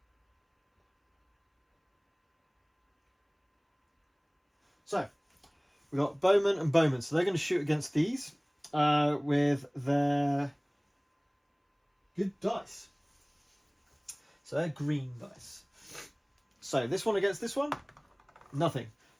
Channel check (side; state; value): both; identical; correlation 1.00